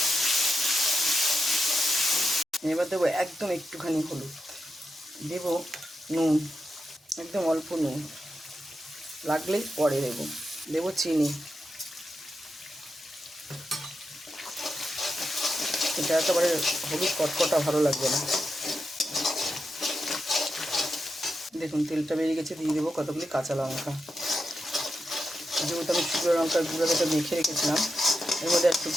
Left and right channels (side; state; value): both; normal; correlation 0.87